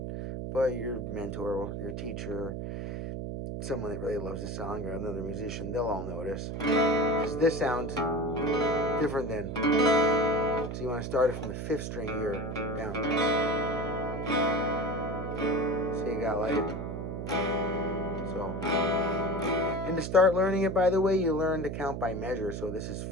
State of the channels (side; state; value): right; noise; hum, 5 dB below the sound